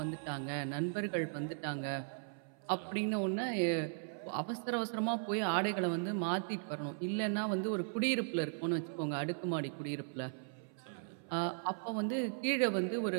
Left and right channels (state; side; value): silent; left; 53 dB below the other